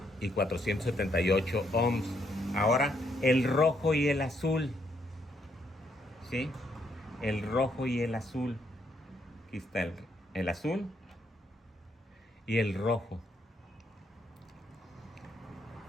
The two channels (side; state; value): both; normal; correlation 0.74